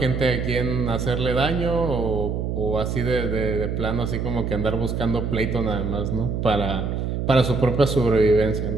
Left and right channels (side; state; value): right; noise; hum, 2 dB below the sound